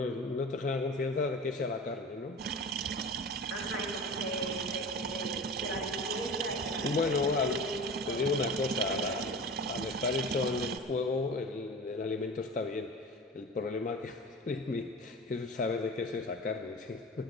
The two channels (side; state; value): both; normal; correlation 0.33